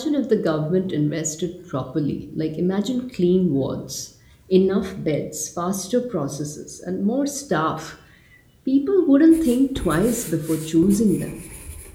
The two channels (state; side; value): identical; both; correlation 1.00